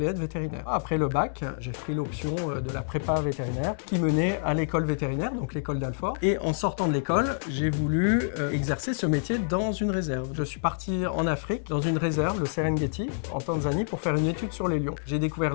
être vétérinaire. Après le bac, j'ai pris l'option de la prépa vétérinaire qui menait à l'école vétérinaire, donc l'école d'Alfort. Et en sortant de l'école, j'ai voulu exercer ce métier dans une réserve. Je suis parti en Afrique, dans une réserve, le Serengeti, en Tanzanie, pour faire une étude sur les lions. J'ai découvert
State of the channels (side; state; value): right; silent; digital silence